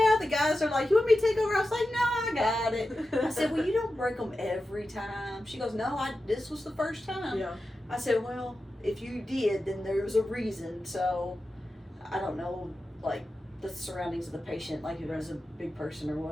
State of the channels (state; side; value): normal; both; correlation 0.92